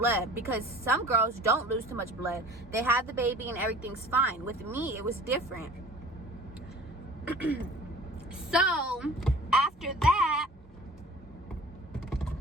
because some girls don't lose too much blood. They have the baby and everything's fine. With me, it was different. So after that,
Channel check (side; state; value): both; normal; correlation 0.46